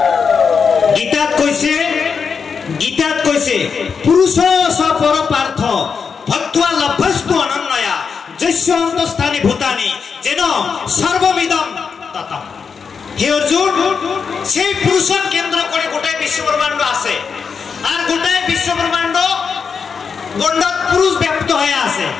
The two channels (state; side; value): quieter; right; 5.9 dB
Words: গীতাত কইছে পুরুষ স পরপার্থ ভক্ত্বা লভ্যস্তু অনন্যয়া যস্য অন্তস্থানি ভূতানি যেন সর্বমিদম ততম। হে অর্জুন, সেই পুরুষক কেন্দ্র করে গোটাই বিশ্বব্রহ্মাণ্ড আছে। আর গোটাই বিশ্বব্রহ্মাণ্ড গণ্ডক পুরুষ ব্যক্ত হয়ে আছে,